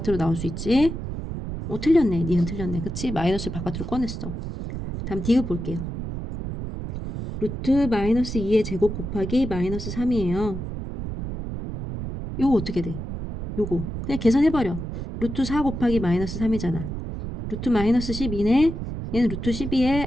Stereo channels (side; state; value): right; noise; rumble, 6 dB below the sound